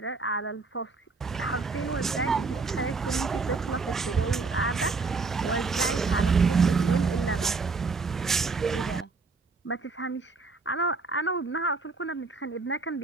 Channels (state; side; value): quieter; left; 4.2 dB